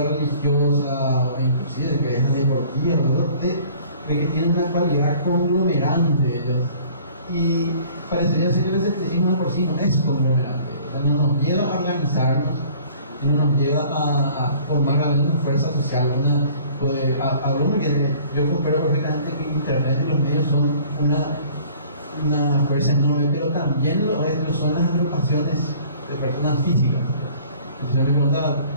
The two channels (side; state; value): both; inverted; correlation -0.52